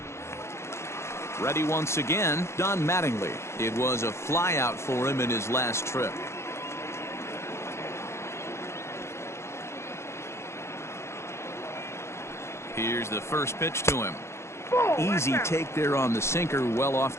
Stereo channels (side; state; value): right; late; 0.13 ms